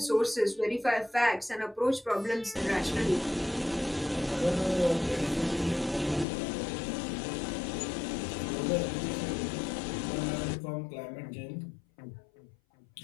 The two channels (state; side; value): drops out; right; at 6.2 s